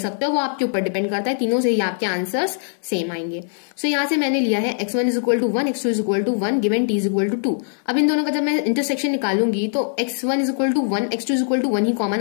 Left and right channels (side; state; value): right; silent; digital silence